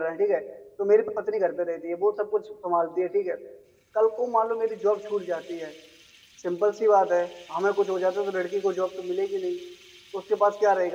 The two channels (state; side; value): identical; both; correlation 1.00